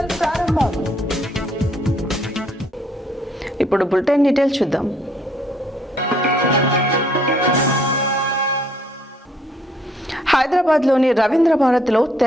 ప్రారంభం. ఇప్పుడు బులెటిన్ డీటెయిల్స్ చూద్దాం. హైదరాబాద్లోని రవీంద్ర భారతిలో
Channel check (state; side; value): normal; both; correlation 0.66